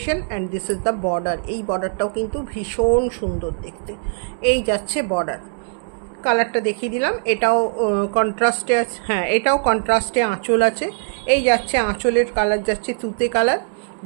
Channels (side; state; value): left; silent; digital silence